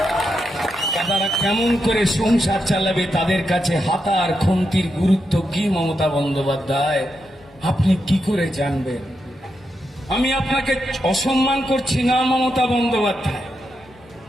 তারা কেমন করে সংসার চালাবে, তাদের কাছে হাতার খুন্তির গুরুত্ব কি মমতা বন্দ্যোপাধ্যায় আপনি কি করে জানবেন? আমি আপনাকে অসম্মান করছি না মমতা বন্দ্যোপাধ্যায়।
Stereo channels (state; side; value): normal; both; correlation 0.85